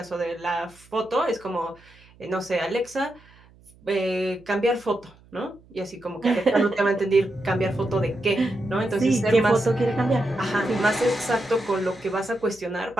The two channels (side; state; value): right; noise; hum, 27 dB below the sound